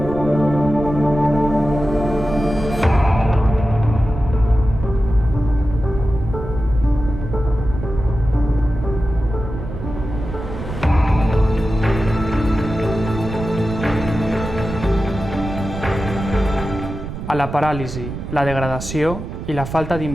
A la paràlisi, la degradació i la falta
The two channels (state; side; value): noise; right; rumble, 8 dB below the sound